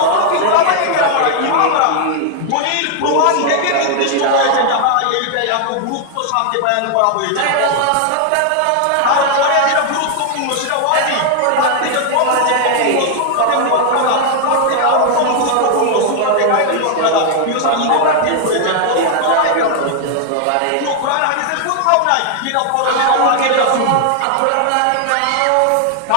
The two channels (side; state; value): both; different; correlation 0.00